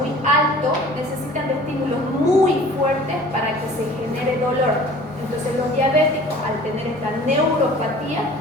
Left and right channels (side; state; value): both; normal; correlation 0.47